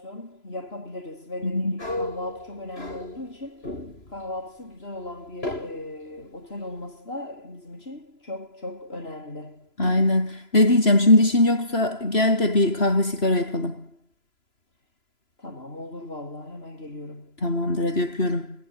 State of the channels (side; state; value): right; late; 3.0 ms